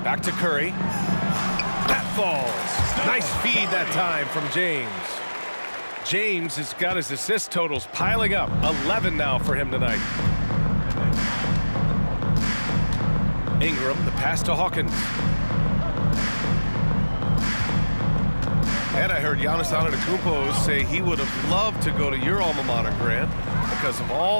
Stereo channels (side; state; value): both; inverted; correlation -1.00